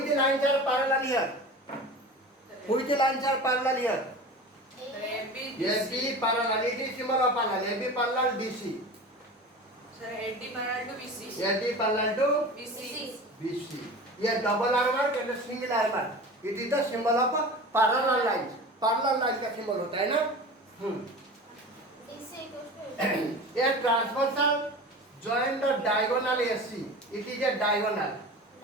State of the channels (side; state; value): both; normal; correlation 0.34